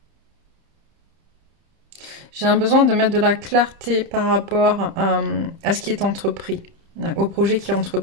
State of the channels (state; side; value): late; left; 30 ms